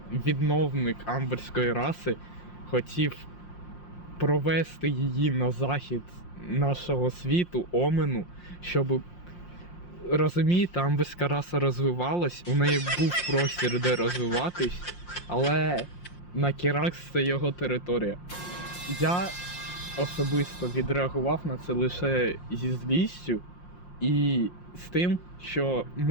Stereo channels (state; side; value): late; right; 5.7 ms